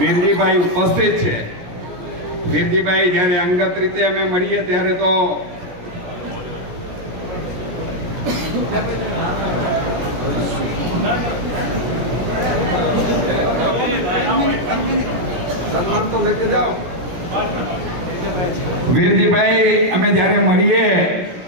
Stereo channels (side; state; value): left; late; 16 ms